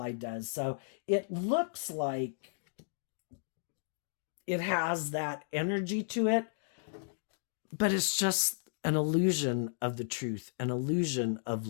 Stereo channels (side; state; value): right; silent; digital silence